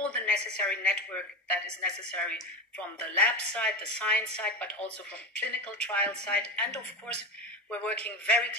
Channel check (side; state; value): both; normal; correlation 0.19